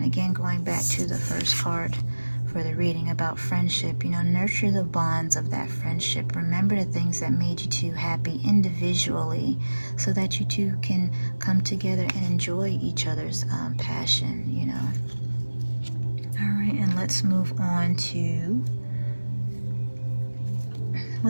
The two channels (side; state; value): both; inverted; correlation -1.00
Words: again, going back to the first card for the reading about friendship, nurture the bonds of that friendship. Remember the things that made you two happy individually so that you two can come together and enjoy each other's passion, All right, and let's move on to